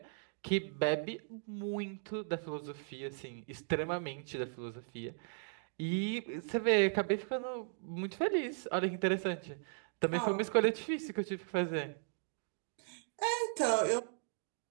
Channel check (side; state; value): left; silent; digital silence